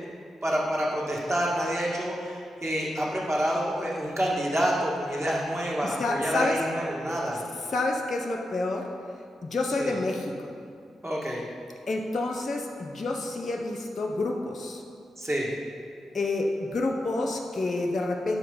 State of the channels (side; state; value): both; normal; correlation 0.87